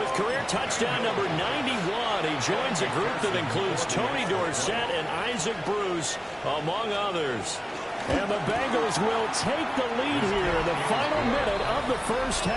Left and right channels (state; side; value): identical; both; correlation 1.00